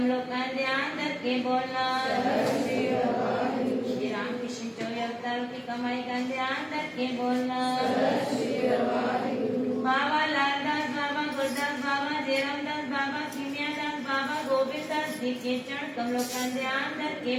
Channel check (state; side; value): identical; both; correlation 1.00